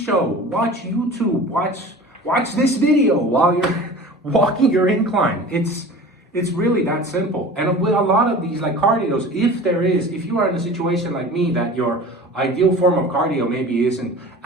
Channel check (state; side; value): normal; both; correlation 0.39